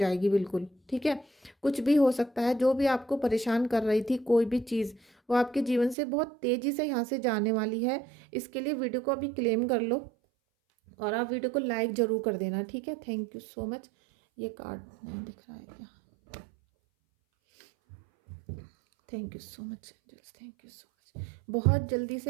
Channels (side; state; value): left; drops out; at 6.0 s